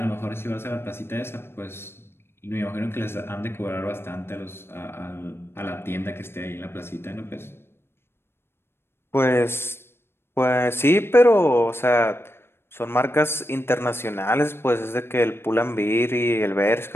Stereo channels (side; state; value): right; late; 0.12 ms